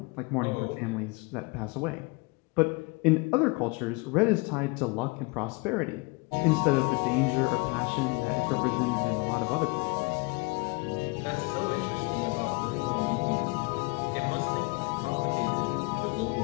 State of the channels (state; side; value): quieter; right; 28.0 dB